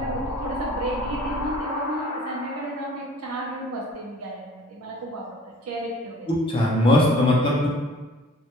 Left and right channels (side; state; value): both; normal; correlation 0.50